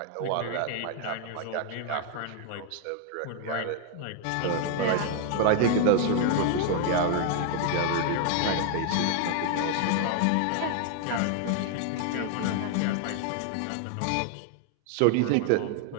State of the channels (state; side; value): different; both; correlation 0.00